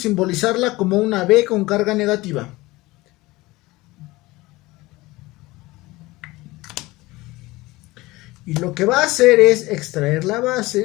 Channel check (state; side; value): quieter; right; 20.2 dB